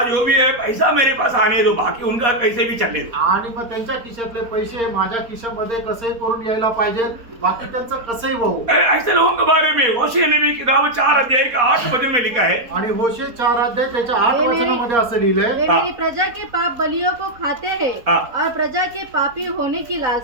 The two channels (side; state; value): left; late; 4.2 ms